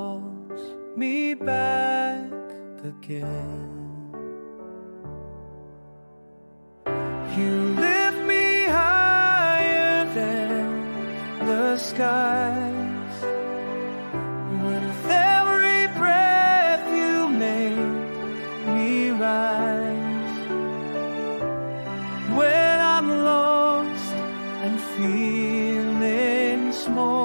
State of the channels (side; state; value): both; inverted; correlation -1.00